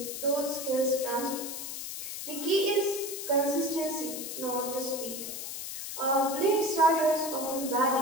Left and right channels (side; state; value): left; noise; hiss, 7 dB below the sound